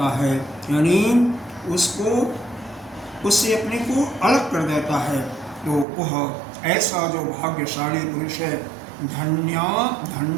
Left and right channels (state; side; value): drops out; left; at 5.9 s